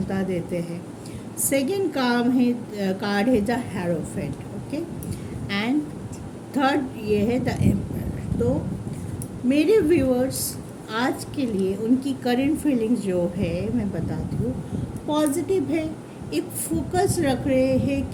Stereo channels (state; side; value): identical; both; correlation 1.00